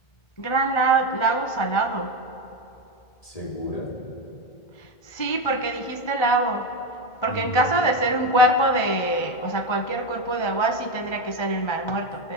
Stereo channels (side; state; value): right; late; 1.4 ms